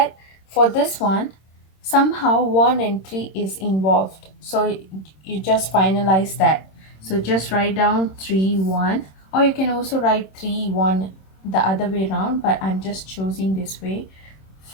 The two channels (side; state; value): right; late; 26 ms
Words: for this one, somehow 1 and 3 is involved. So you just finalize that. So just write down 3, 1, or you can also write 3, 1 the other way around, but I'm just choosing this way